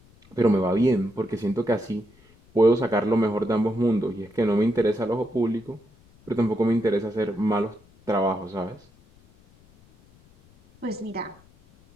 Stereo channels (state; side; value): noise; left; rumble, 29 dB below the sound